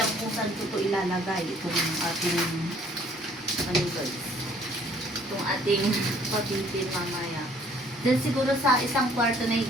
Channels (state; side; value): normal; both; correlation 0.59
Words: kung saan ko ito ilalagay. Itong ating, ano guys, itong ating papitin mamaya. Then siguro sa isang kwarto na